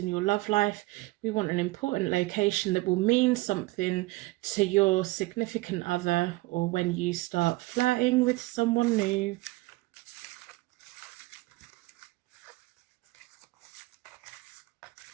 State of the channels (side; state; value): left; quieter; 20.9 dB